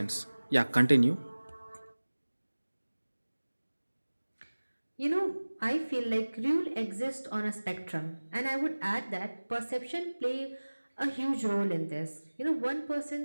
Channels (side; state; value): both; inverted; correlation -1.00